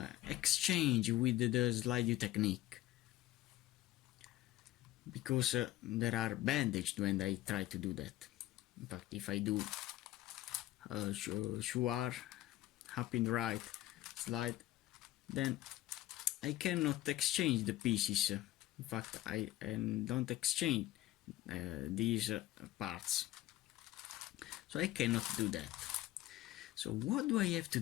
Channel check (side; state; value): right; quieter; 15.5 dB